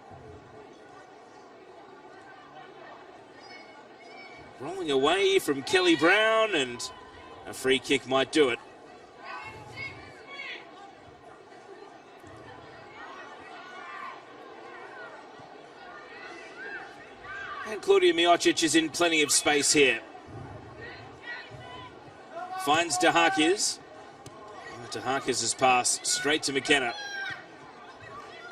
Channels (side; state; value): both; identical; correlation 1.00